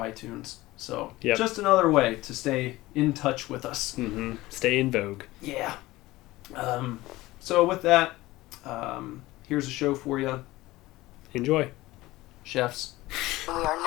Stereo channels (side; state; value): right; quieter; 18.6 dB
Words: So just another way to stay in touch with us. Mm-hmm. Stay in vogue. Yeah. So with that, here's a show for you. Enjoy. Chefs. We are